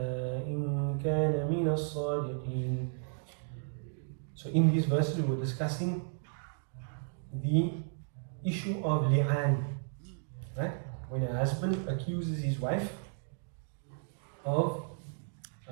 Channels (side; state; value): left; silent; digital silence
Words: إن كان من الصادقين. So in these verses we were discussing the issue of li'an, right? When a husband accuses his wife of